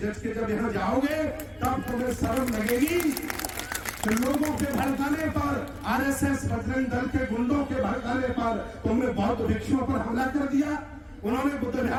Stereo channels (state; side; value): identical; both; correlation 1.00